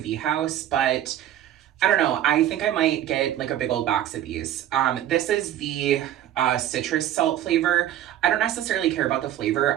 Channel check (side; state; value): left; quieter; 12.0 dB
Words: house, but I don't know. I think I might get like a big old box of these. This is the citrus salt flavor. I don't necessarily care about the